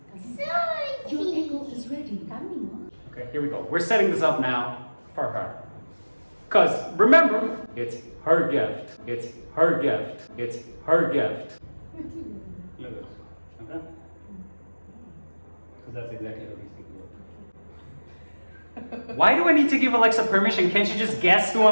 Your Echo is ready. Coming. Okay, here we go. We're setting this up now for her. Because remember, it's her gift. It's her gift. It's her gift. Look at this. Okay? Because that's exactly how these things work. Why do I need to give Alexa permission? Can't you just guess who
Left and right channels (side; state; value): both; inverted; correlation -1.00